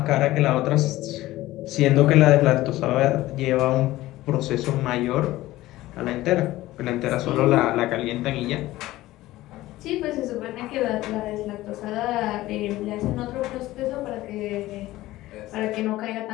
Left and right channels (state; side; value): quieter; right; 16.8 dB